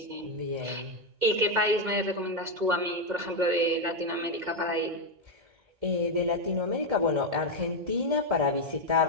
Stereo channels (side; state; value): left; late; 2.1 ms